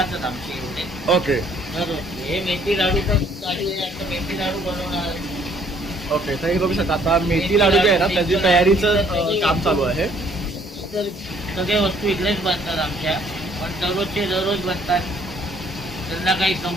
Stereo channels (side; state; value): both; normal; correlation 0.62